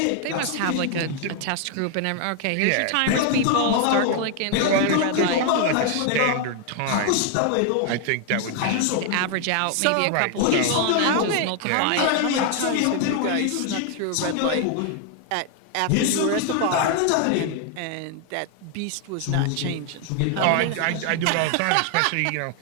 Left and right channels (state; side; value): different; both; correlation 0.00